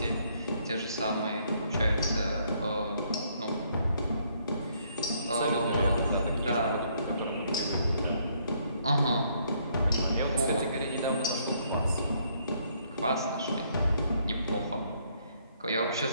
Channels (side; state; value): both; inverted; correlation -0.69